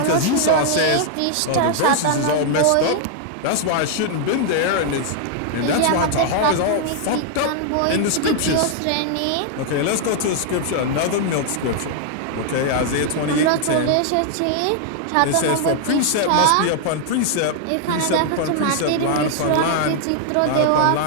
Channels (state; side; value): different; both; correlation 0.00